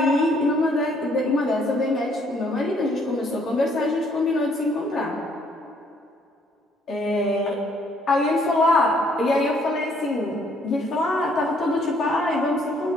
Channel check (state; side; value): normal; both; correlation 0.65